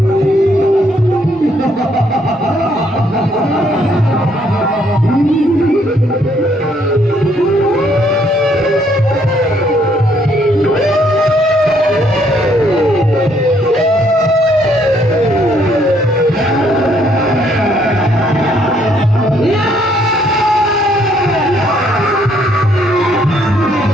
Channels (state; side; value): normal; both; correlation 0.68